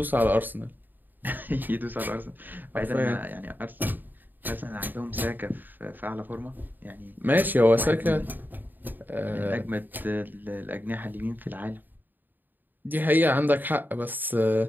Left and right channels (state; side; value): late; left; 0.090 ms